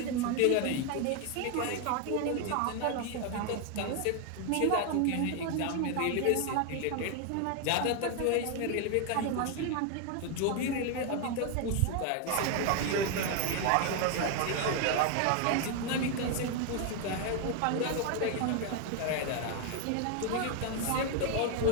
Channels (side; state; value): both; different; correlation 0.01